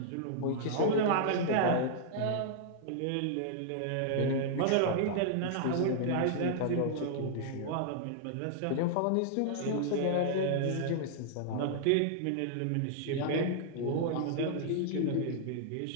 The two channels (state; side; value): different; both; correlation -0.01